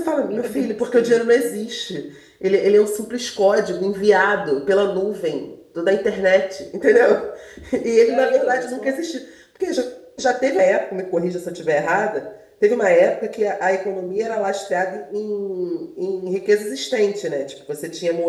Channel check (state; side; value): identical; both; correlation 1.00